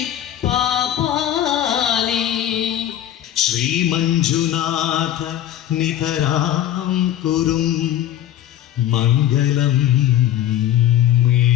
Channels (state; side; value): quieter; right; 11.8 dB